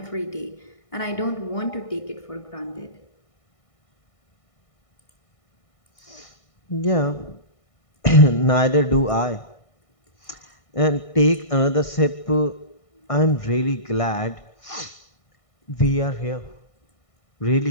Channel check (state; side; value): late; right; 1.6 ms